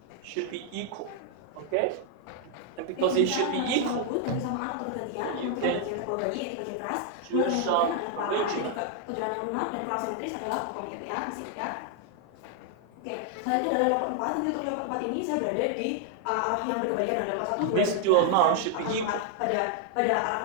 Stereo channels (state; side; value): different; both; correlation 0.00